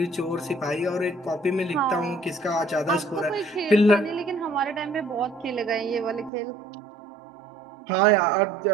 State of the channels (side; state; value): left; drops out; at 6.3 s